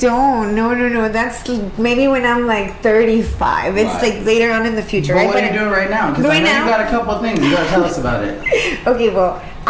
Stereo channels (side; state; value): both; identical; correlation 1.00